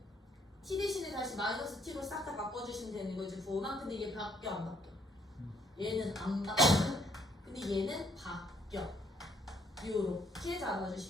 t 대신에 다시 마이너스 t로 싹 다 바꿔주시면 되는 거지, 부호만. 근데 얘 바뀌어 안 바뀌어? 얘는 안 바뀌어. 근데 얘는 바뀌어. 이렇게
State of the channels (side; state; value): both; normal; correlation 0.68